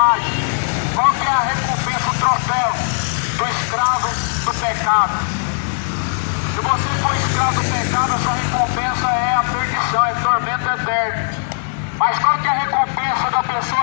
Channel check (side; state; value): right; silent; digital silence